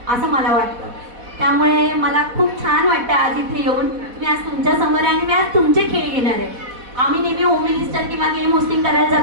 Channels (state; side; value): late; left; 4.1 ms